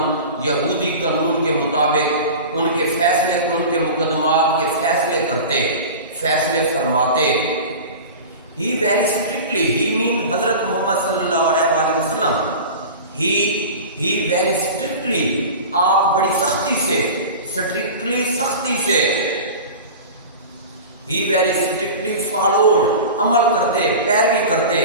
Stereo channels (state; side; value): inverted; both; correlation -0.33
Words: یہودی قانون کے مطابق ان کے فیصلے، ان کے مقدمات کے فیصلے کرتے، فیصلے فرماتے۔ He very strictly, he mean حضرت محمد صلی اللہ علیہ وآلہ وسلم، he very strictly، آپ بڑی سختی سے، strictly سختی سے، he very strictly followed، عمل کرتے، پیروی کرتے،